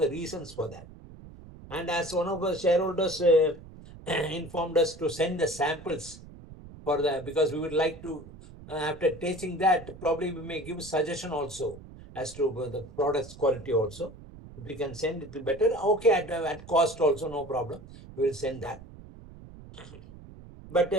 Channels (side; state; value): right; noise; rumble, 17 dB below the sound